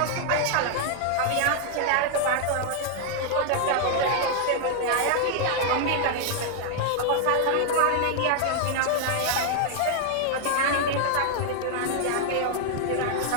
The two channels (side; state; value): both; different; correlation 0.00